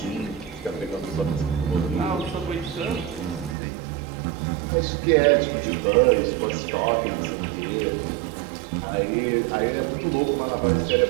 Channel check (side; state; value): left; drops out; at 3.6 s